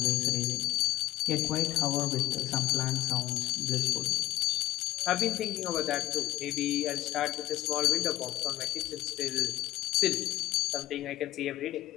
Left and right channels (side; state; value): right; quieter; 16.1 dB